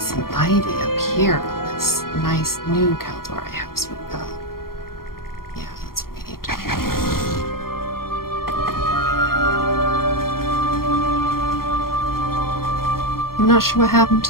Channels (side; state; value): right; late; 0.92 ms